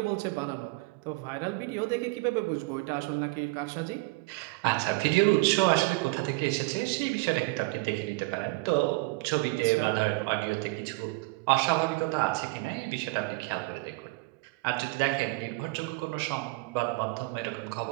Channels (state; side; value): quieter; left; 24.5 dB